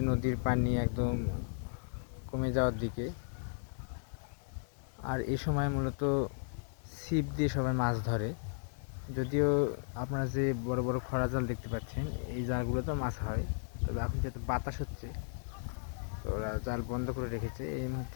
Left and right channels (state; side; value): silent; right; digital silence